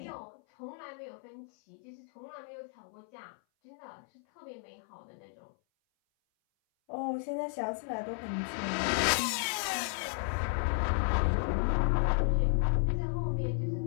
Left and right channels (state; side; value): silent; right; 55 dB below the other